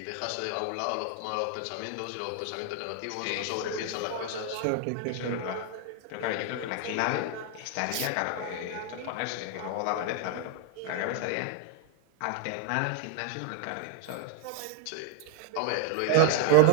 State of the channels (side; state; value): both; different; correlation 0.00